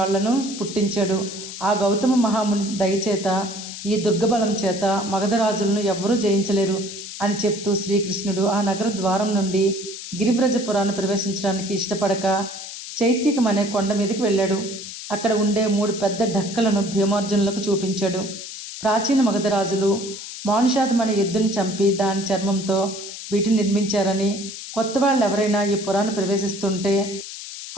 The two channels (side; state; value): left; noise; hiss, 10 dB below the sound